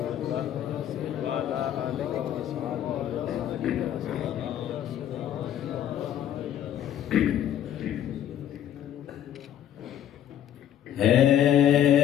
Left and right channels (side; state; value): right; quieter; 10.7 dB